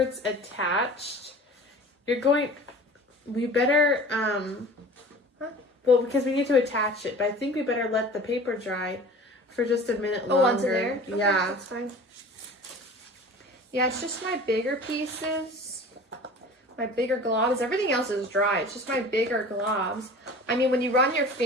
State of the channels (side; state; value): both; normal; correlation 0.41